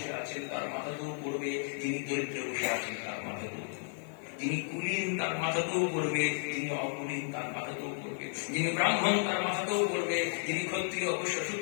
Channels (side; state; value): right; silent; 56 dB below the other